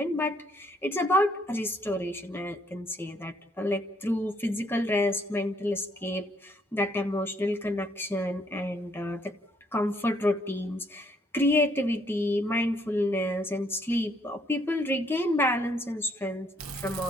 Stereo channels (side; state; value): both; normal; correlation 0.69